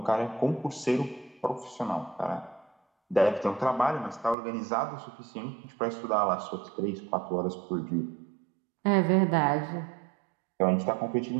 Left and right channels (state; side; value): drops out; left; at 4.4 s